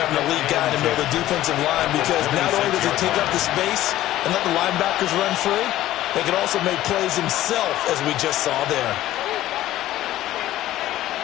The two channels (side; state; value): right; quieter; 14.4 dB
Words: a lead guy in the middle of the defensive line, because not only does he take up the space and let the linebackers run free, they can also make plays himself, as we just saw there.